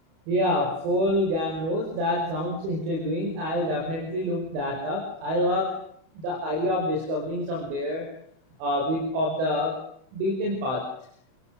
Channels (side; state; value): left; late; 31 ms